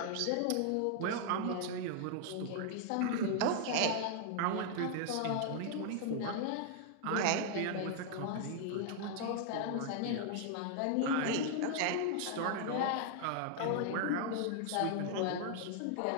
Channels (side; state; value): both; different; correlation 0.00